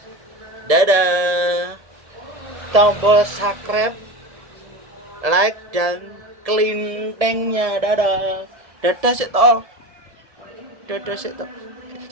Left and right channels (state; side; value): late; left; 1.7 ms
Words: dadah. Tombol subscribe, like dan kelintengnya. Dadah, dadah sih toh, dadah sih toh.